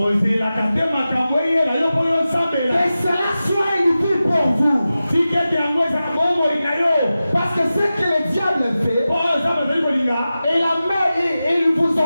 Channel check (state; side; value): inverted; both; correlation -0.94